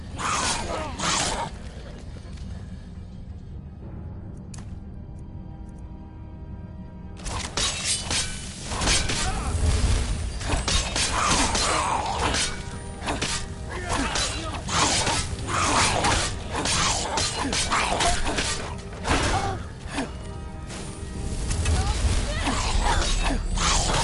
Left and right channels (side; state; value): both; identical; correlation 1.00